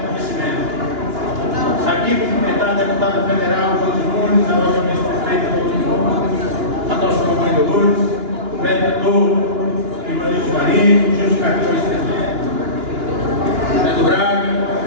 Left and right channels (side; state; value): left; late; 2.9 ms